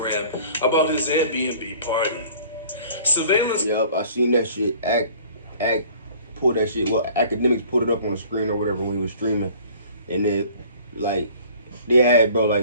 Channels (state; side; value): inverted; both; correlation -0.50